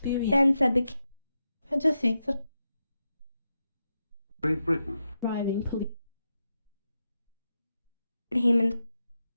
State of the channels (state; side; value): inverted; both; correlation -0.87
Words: Then said the king, And to think that Great Britain. Driving police. Haman,